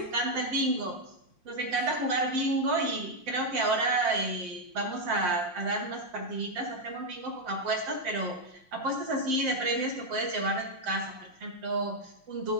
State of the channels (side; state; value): left; late; 5.7 ms